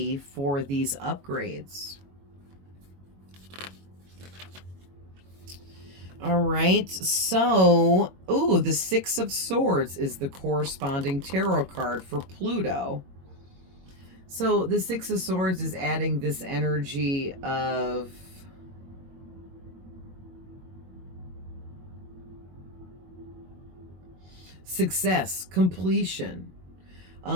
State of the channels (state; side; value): late; left; 22 ms